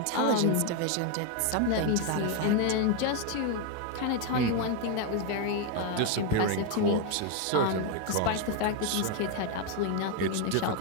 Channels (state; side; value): different; both; correlation 0.01